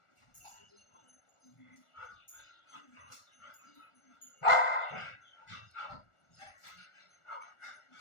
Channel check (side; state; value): right; late; 1.4 ms